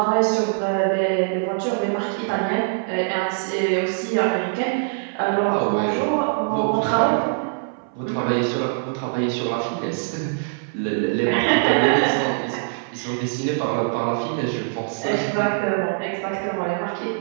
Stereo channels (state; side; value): silent; left; 58 dB below the other